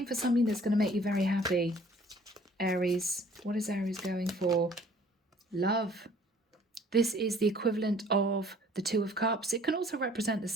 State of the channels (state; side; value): normal; both; correlation 0.55